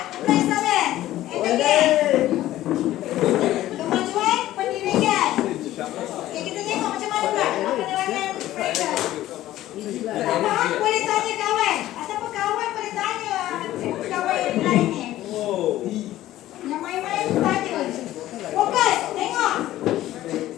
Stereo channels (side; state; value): right; quieter; 14.5 dB